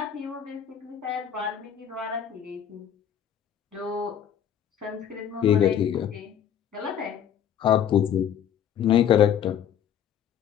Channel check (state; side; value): quieter; right; 9.1 dB